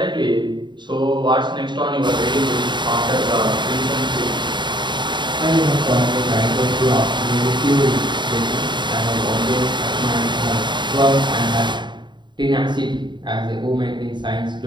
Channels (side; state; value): left; late; 0.22 ms